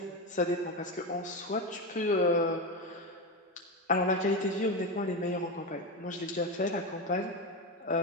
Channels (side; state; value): both; normal; correlation 0.15